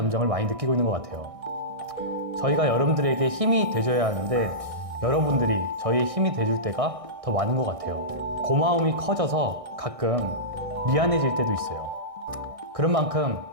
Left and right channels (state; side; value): late; left; 1.6 ms